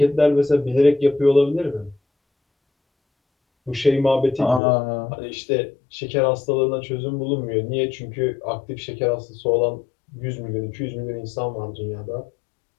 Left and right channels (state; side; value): drops out; right; at 4.6 s